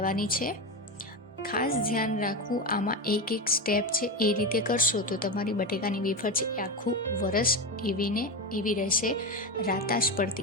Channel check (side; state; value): both; normal; correlation 0.17